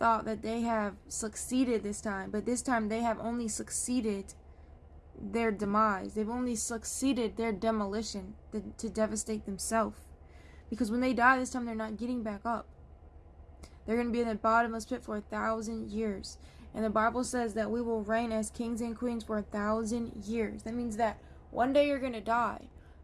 that they have succeeded this time, but this time they have only succeeded their demise. They've only succeeded their demolition to devastate themselves. Because when they die this time, they're not getting back up. They're going to be in the bottomless pit for 1,000 years. And the Bible says that we will reign as kings and queens for 1,000 years. That means that one day you're going to die.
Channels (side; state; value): both; identical; correlation 1.00